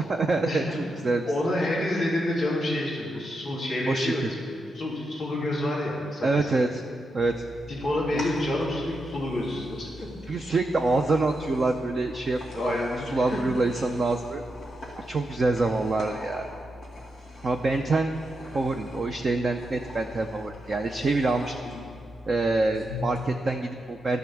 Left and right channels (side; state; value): both; normal; correlation 0.85